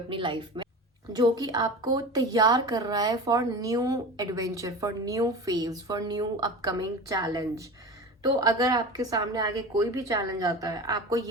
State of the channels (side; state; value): both; normal; correlation 0.32